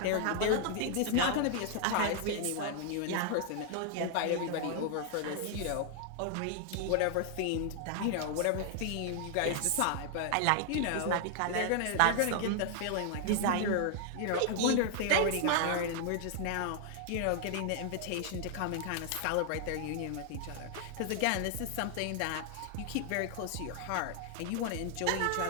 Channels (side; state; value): both; different; correlation 0.00